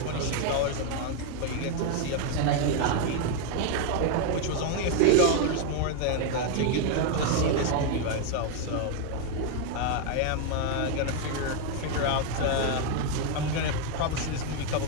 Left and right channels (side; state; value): both; different; correlation 0.01